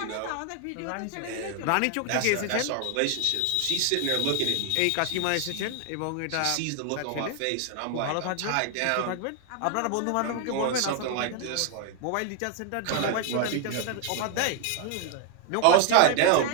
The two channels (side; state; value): both; different; correlation 0.00